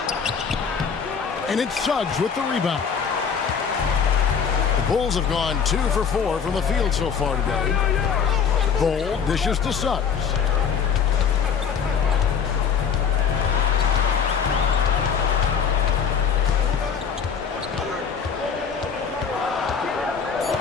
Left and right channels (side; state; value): right; quieter; 6.8 dB